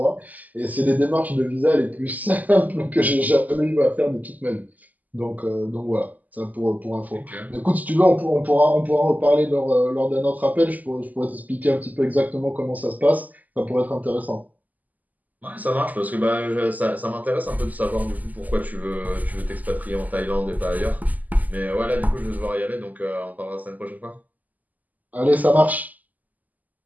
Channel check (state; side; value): late; left; 0.080 ms